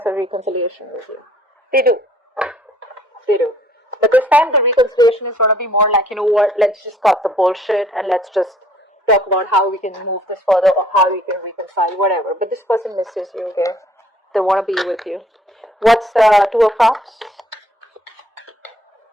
a reconciliation with you. They do. They do. But this time the reconciliation is going to be more like, you know what, let's just cut the bullshit and let's just talk about how we can move this further or how we can reconcile, whatever. But this person misses you, okay? They want to be with you. What's the Two of Cups?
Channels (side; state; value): both; normal; correlation 0.59